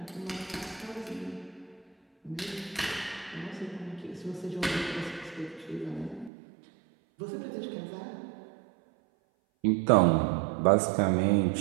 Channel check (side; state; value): left; drops out; at 6.3 s